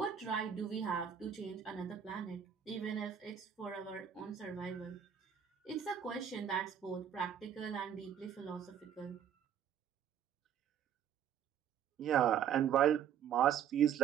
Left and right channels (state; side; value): quieter; left; 8.8 dB